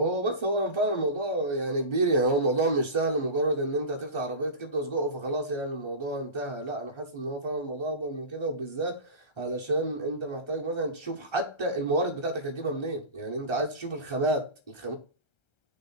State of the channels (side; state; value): right; late; 1.3 ms